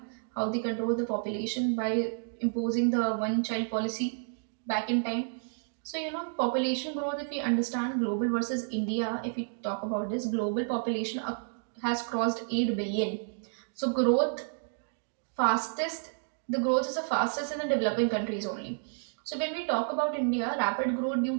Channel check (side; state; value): left; silent; digital silence